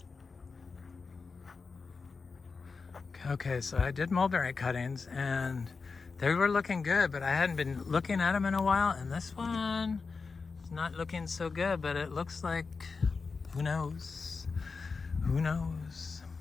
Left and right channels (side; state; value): right; quieter; 4.6 dB